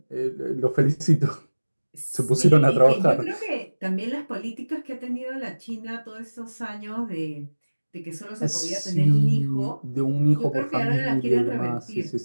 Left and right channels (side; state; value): both; inverted; correlation -1.00